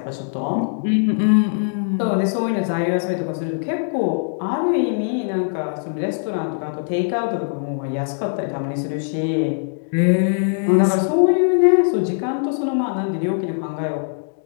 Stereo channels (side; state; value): right; silent; digital silence